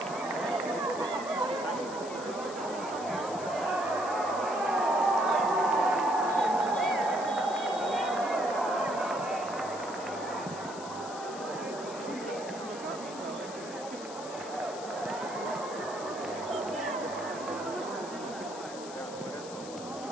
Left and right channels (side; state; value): left; noise; hiss, 14 dB below the sound